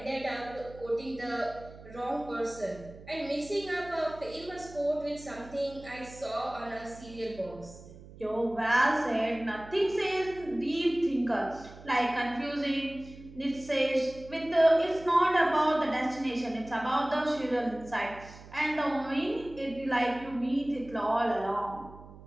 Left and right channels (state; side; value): noise; right; hum, 18 dB below the sound